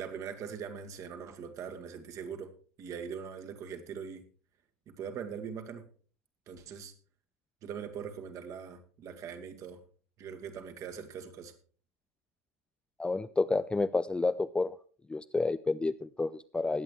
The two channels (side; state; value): both; normal; correlation 0.86